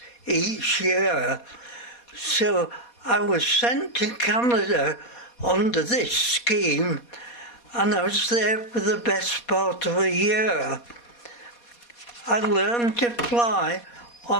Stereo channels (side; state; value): right; late; 4.2 ms